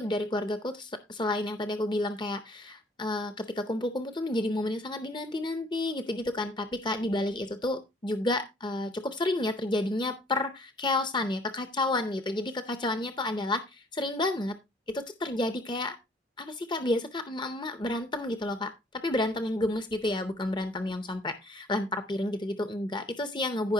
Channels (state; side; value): normal; both; correlation 0.59